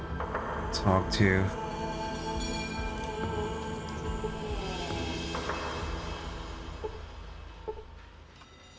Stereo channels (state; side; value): identical; both; correlation 1.00